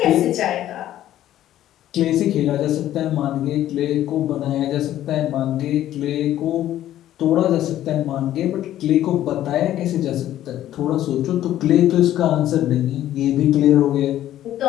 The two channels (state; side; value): quieter; right; 12.7 dB